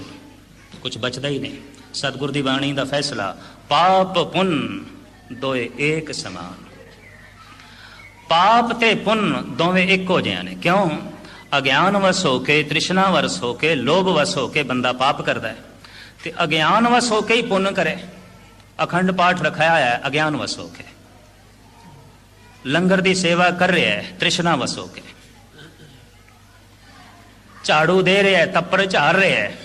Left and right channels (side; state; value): both; identical; correlation 1.00